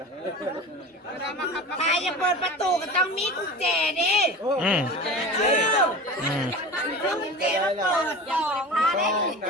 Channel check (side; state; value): both; normal; correlation 0.33